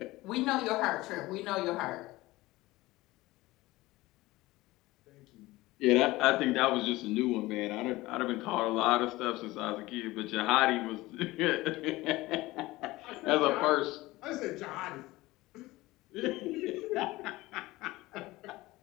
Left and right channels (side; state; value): right; quieter; 19.2 dB